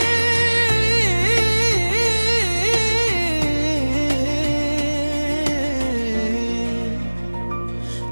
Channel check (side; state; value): both; inverted; correlation -1.00